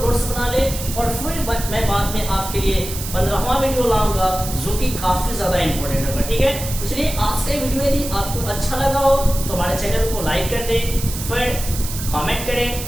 नोट्स बना ले और फिर मैं बाद में आपके लिए 15वां वीडियो लाऊंगा जो कि काफी ज्यादा इंपॉर्टेंट होगा, ठीक है। इसलिए आज का वीडियो यदि आपको अच्छा लगा हो तो हमारे चैनल को लाइक कर दे, फिर कमेंट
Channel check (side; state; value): right; noise; hiss, 8 dB below the sound